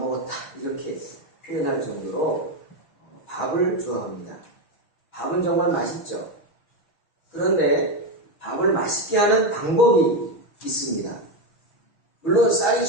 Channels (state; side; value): late; right; 6.4 ms